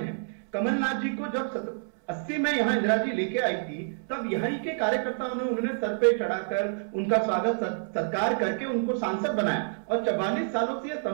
कमलनाथ जी को जब 80 में यहाँ इंदिरा जी लेके आई थी, तब यहीं के कार्यकर्ताओं ने उन्होंने सर पे चढ़ाकर उनका स्वागत सत्कार करके उनको सांसद बनाया और 44 सालों से यह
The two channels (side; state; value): left; silent; 59 dB below the other